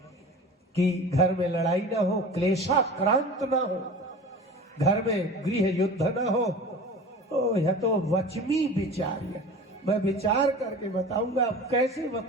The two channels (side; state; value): both; normal; correlation 0.37